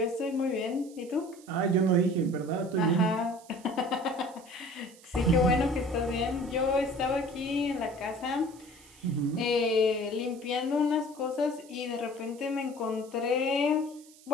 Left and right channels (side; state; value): right; noise; hiss, 23 dB below the sound